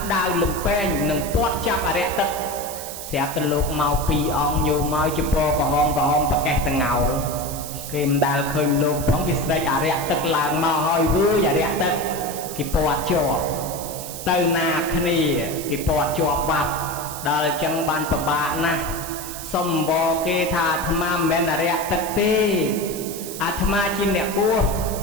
ដាវលំពេងនឹងពាត់ចាប់អរិយទឹកស្រាប់តែលោកមកពីរអង្គញោមមកជាពណ៌ក្រហមប្រកេះតងោលគេមិនដែលឃើញលោកផងគេស្រែកអរិយទឹកឡើងមកហើយវើយអរិយទឹកគេពាត់ជាប់ទៅណាគ្នាគេពាត់ជាប់បាត់ដល់អញ្ចឹងបានពិបាកណាស់សំបគេថាអាត្មាមិនមែនអរិយទឹកទេអាត្មាជាអ្នកបួស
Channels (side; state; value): right; noise; hiss, 10 dB below the sound